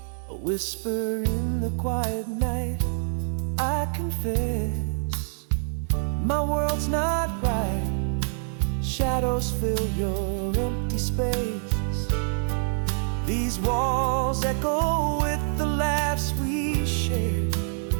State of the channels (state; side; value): silent; left; digital silence